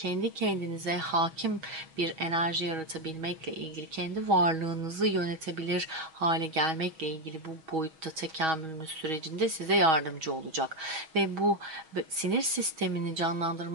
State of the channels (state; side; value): late; left; 6.3 ms